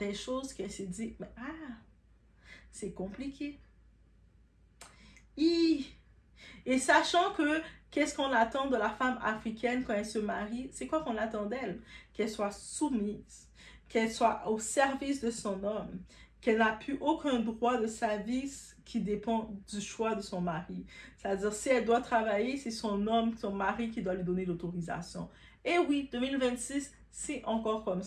choses qu'elle s'est dit, mais c'est compliqué. Et sachant que qu'est-ce qu'on attend de la femme africaine quand elle se marie, c'est quoi qu'on attend d'elle? Qu'elle soit soumise, qu'elle soit au service de son homme, qu'elle n'a plus aucun droit de sa vie qui dépend du choix de son mari. C'est-à-dire, si elle doit travailler, c'est son homme, son mari qui doit lui donner l'autorisation. Et oui, 2026, c'est encore comme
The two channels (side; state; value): both; identical; correlation 1.00